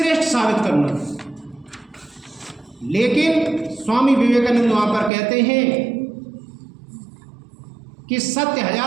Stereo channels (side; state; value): left; drops out; at 5.1 s